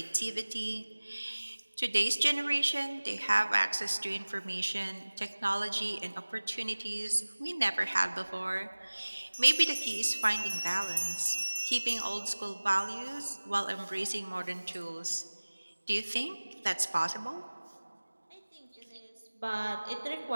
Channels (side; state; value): both; inverted; correlation -1.00